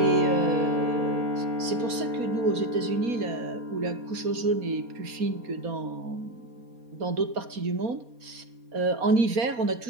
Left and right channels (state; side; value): late; left; 4.2 ms